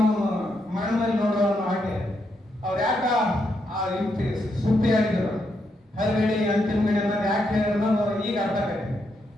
ಮರಣದಲ್ಲಿ ನೋಡುವ ಹಾಗೆ ಅವ್ರು ಯಾಕ ಆ ಯುಕ್ತಿ ಸೂಕ್ತಿಯಾಗಿದ್ರು, ಹರಿಗಡಿ ಅಂತಿಮ ಗಡಿ ಅನ್ನೋದು ಯಾಕೆ ಹೇಳಿದ್ರು ಅನ್ನೋದು ಈಗ ಅರ್ಥ ಆಗಿದೆ.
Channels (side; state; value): both; normal; correlation 0.80